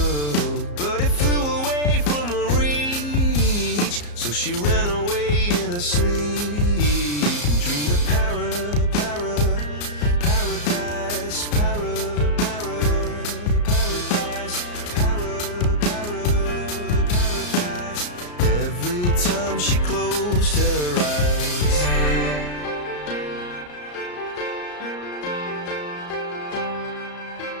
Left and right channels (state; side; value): late; right; 34 ms